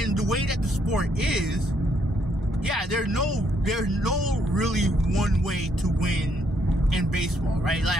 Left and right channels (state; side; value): normal; both; correlation 0.72